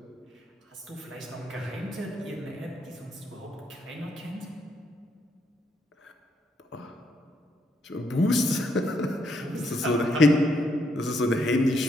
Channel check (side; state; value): both; normal; correlation 0.75